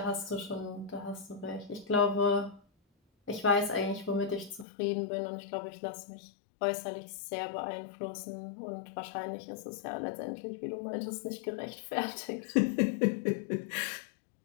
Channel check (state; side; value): drops out; right; at 4.7 s